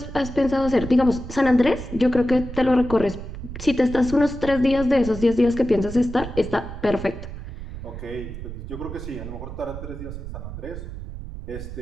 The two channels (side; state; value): right; noise; rumble, 9 dB below the sound